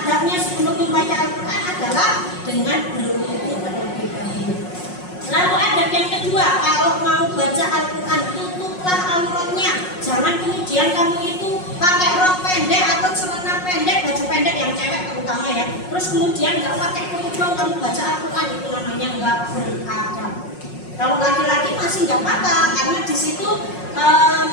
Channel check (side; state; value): right; late; 5.5 ms